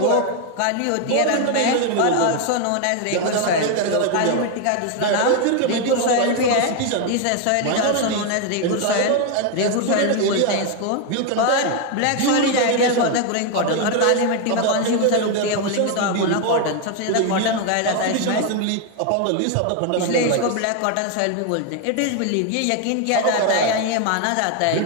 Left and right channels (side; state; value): both; different; correlation 0.01